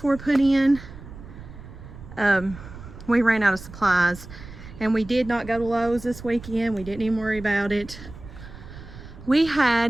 put in. We ran out of supplies, and we did not go to Lowe's this weekend. We didn't even worry about it. We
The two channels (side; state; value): right; noise; rumble, 15 dB below the sound